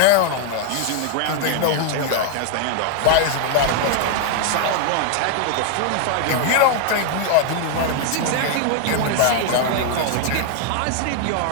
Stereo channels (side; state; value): both; different; correlation 0.00